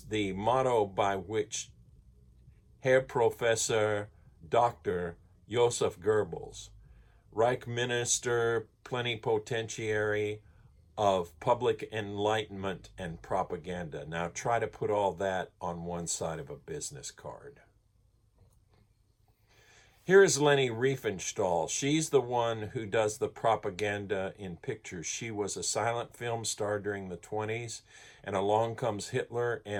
the motto by which Herr Professor Dr. Joseph Goebbels, Reich Minister Plenipotentiary of Public Enlightenment and Propaganda. Now try to put all that on one side of a business card. Here is Leni Riefenstahl. She's the one who does the propaganda in pictures. She was a silent film star during the 20s, and along comes Hitler,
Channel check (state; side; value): identical; both; correlation 1.00